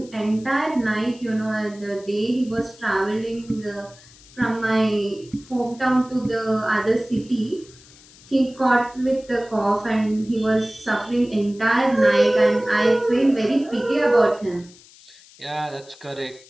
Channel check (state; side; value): noise; left; hiss, 24 dB below the sound